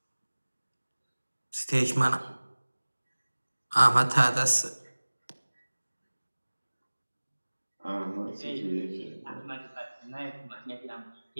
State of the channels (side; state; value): both; inverted; correlation -1.00